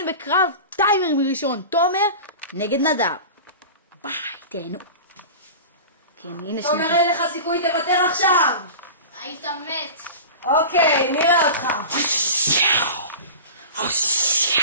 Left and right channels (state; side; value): inverted; both; correlation -0.33